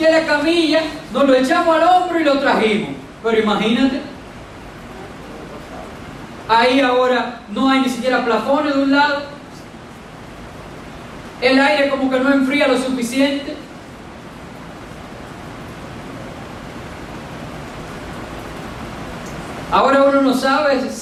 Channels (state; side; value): identical; both; correlation 1.00